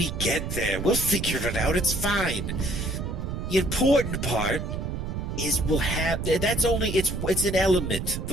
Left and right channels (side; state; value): right; noise; rumble, 4 dB below the sound